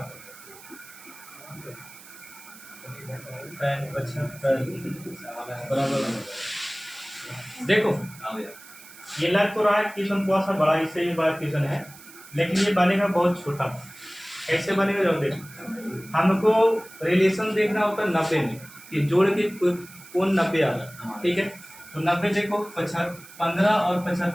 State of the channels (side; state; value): right; noise; hiss, 19 dB below the sound